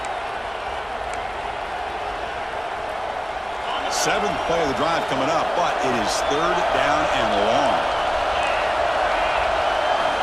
Seventh play of the drive coming up, but it is third down and long.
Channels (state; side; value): identical; both; correlation 1.00